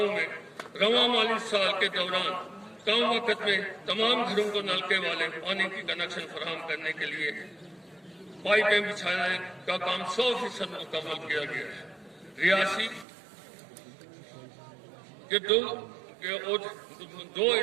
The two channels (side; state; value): left; drops out; at 13.1 s